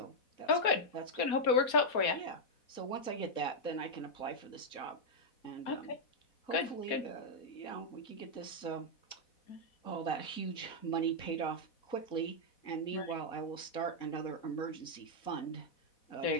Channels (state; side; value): late; right; 4.1 ms